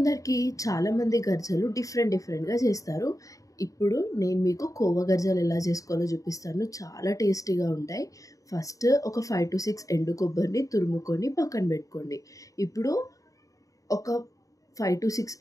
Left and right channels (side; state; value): right; late; 0.16 ms